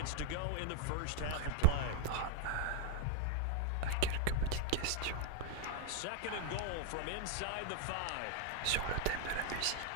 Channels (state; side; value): different; both; correlation 0.00